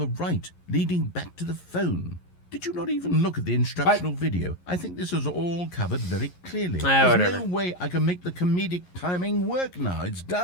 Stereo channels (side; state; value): right; late; 11 ms